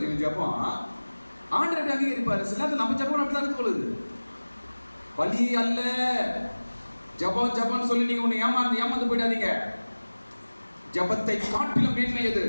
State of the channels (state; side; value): inverted; both; correlation -1.00